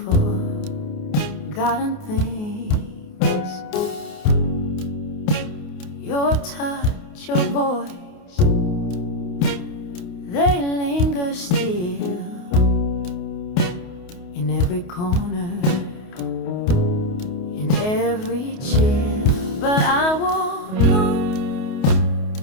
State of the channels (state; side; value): late; right; 28 ms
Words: forgotten things. Your touch, your voice, they linger still in every corner, in every chill. But I walk on